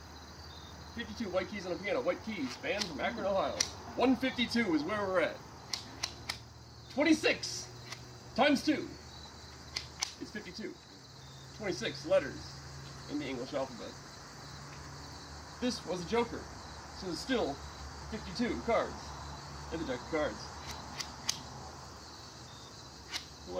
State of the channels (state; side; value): identical; both; correlation 1.00